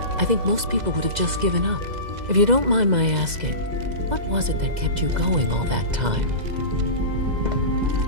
I think most people would have just given up. If you don't mind my asking, what was it that kept you going all that time?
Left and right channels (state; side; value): late; left; 2.0 ms